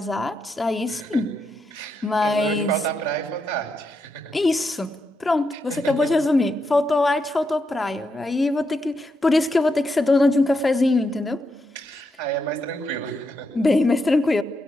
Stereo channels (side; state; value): both; normal; correlation 0.83